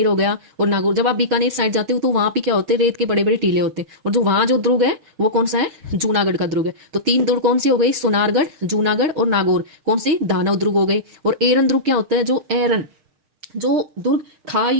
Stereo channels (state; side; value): late; left; 6.6 ms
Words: हो गया और नागौर, जब आप बीकानेर साइड जाते हो तो वहां पे क्या होते हैं? रेत के बड़े बड़े टीले होते हैं। और जो वहां जो दुर्ग है वो कौन सा है? जूनागढ़ का दुर्ग है। तो 3 दुर्ग कौन से हो गए? सोनारगढ़, जूनागढ़ और नागौर। कौन से? दानव दुर्ग हो गए। और एरन दुर्ग क्या होता है? जो दुर्ग